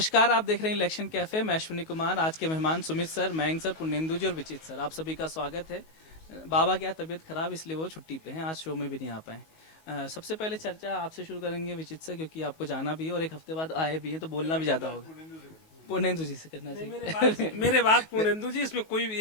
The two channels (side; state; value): right; late; 19 ms